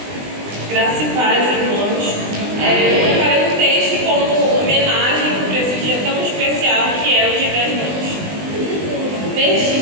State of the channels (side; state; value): left; late; 20 ms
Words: Graça e paz, irmãos. Eu preparei um texto como homenagem para esse dia tão especial que é o Dia das Mães.